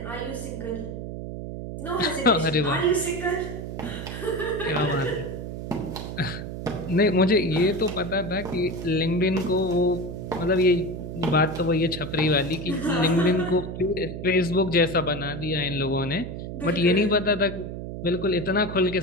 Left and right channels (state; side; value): noise; right; hum, 7 dB below the sound